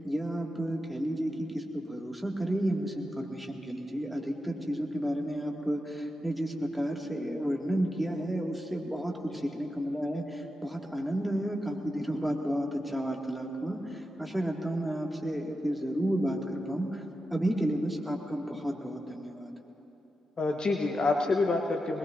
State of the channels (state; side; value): normal; both; correlation 0.89